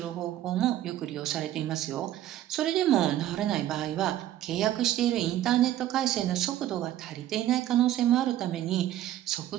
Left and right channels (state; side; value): quieter; left; 12.8 dB